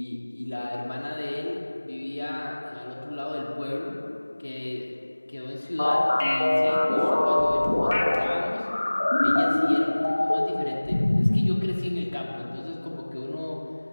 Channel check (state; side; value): inverted; both; correlation -1.00